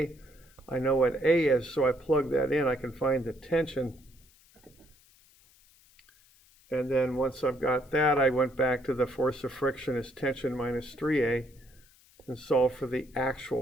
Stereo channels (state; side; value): noise; left; hiss, 29 dB below the sound